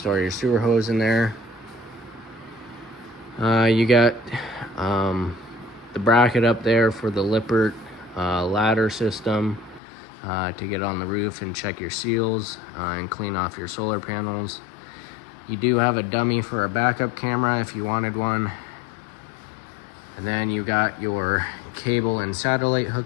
your sewer hose in there. You got the bracket up there for the Lippert ladder system to get on the roof and check your seals and clean off your solar panels. You do have a dummy for a backup camera if you wanted one. And then you got your cable and satellite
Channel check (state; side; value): drops out; right; at 9.8 s